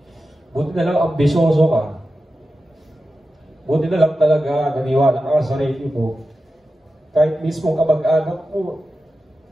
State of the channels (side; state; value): both; normal; correlation 0.92